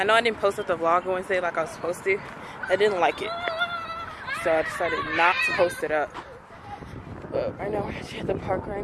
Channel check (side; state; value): both; identical; correlation 1.00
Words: know I didn't post up the vlog Wednesday like I was supposed to. I didn't like it. So I decided not to post it up. But right now we're actually at the park